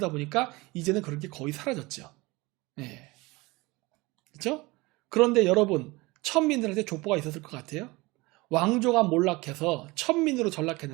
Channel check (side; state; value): left; quieter; 22.8 dB